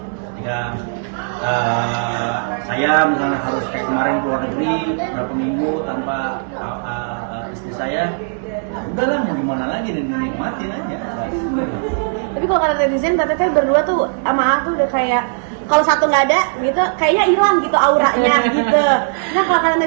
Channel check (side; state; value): left; silent; 67 dB below the other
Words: Ketika saya misalnya harus kayak kemarin keluar negeri berapa minggu tanpa istri saya, ya udahlah mau gimana lagi, dan nikmatin aja. Tapi kalau kata netizen, Teteh berdua tuh sama A tuh udah kayak kalau satu nggak ada gitu, kayaknya hilang gitu auranya gitu. Nah kalau kata